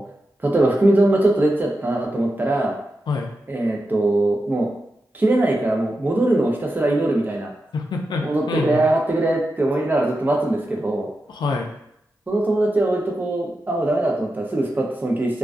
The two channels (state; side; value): normal; both; correlation 0.89